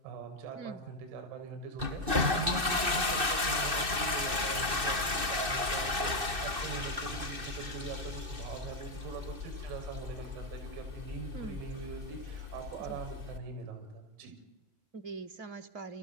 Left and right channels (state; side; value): late; left; 2.6 ms